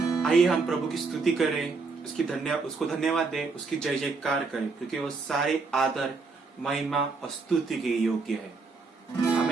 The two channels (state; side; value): quieter; left; 4.3 dB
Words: आइए हम प्रभु की स्तुति करें, उसको धन्यवाद दें, उसकी जय जयकार करें, क्योंकि वो सारे आदर, महिमा और स्तुति के योग्य है।